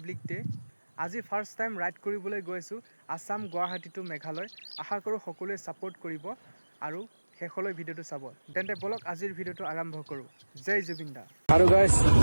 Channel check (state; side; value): inverted; both; correlation -1.00